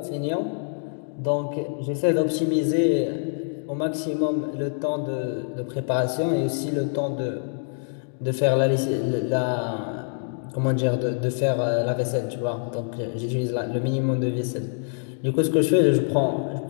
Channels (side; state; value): right; silent; digital silence